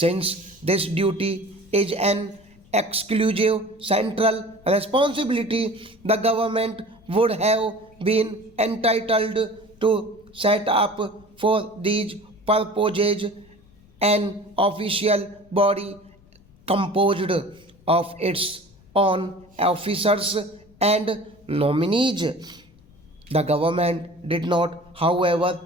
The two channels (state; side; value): noise; left; rumble, 28 dB below the sound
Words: this duty is an exclusive central responsibility, the government would have been entitled to set up for these purposes an official body composed of its own officers and nominees. The government did not,